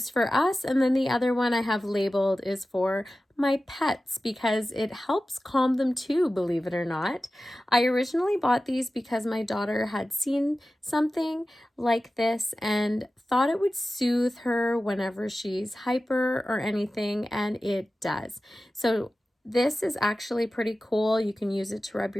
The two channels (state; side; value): normal; both; correlation 0.95